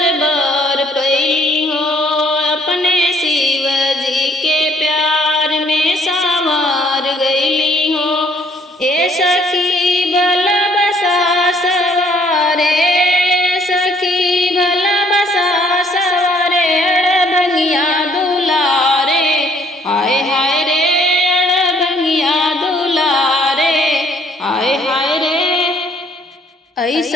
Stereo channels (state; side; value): normal; both; correlation 0.63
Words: बर पैली हो, अपने शिव जी के प्यार में संवर गईली हो। ए सखी भल बसा सवारे, सखी भल बसा सवारे, अड़भंगिया दुलारे, हाय हाय रे अड़भंगिया दुलारे, हाय हाय रे।